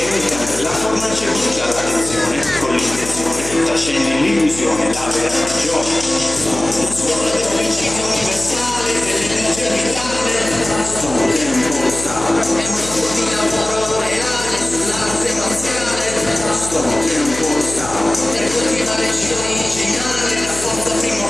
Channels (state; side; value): noise; left; hum, 12 dB below the sound